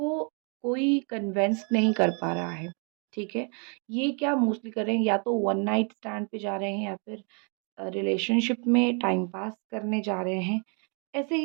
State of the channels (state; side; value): quieter; left; 38.2 dB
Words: कोई कन्विंस नहीं कर पा रहा है, ठीक है? ये क्या मोस्टली कर रहे हैं, या तो वन नाइट स्टैंड पे जा रहे हैं, या फिर रिलेशनशिप में टाइम पास करने जा रहे हैं। ऐसे